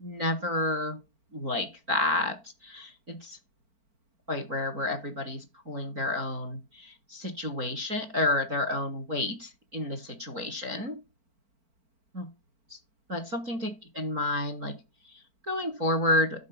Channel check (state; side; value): late; left; 4.4 ms